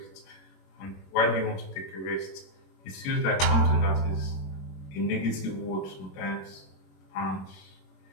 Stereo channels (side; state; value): right; late; 21 ms